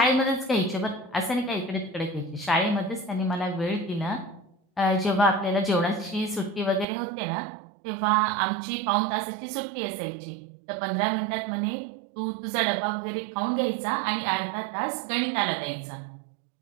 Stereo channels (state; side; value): drops out; left; at 6.9 s